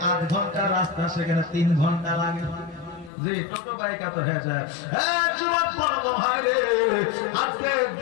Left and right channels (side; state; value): right; drops out; at 3.1 s